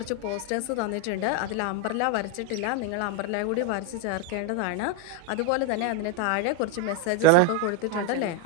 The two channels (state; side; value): different; both; correlation 0.01